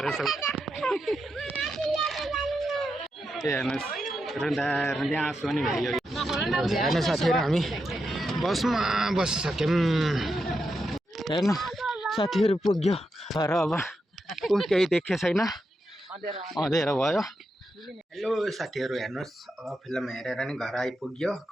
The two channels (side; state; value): both; normal; correlation 0.86